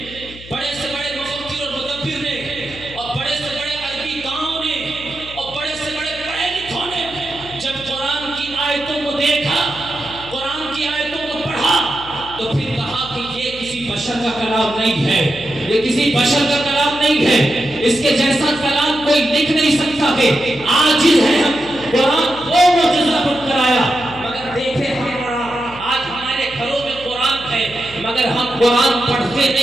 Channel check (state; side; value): noise; left; hum, 18 dB below the sound